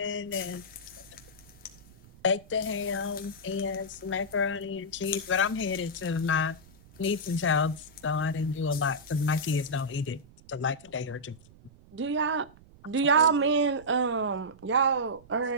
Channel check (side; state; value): right; noise; rumble, 24 dB below the sound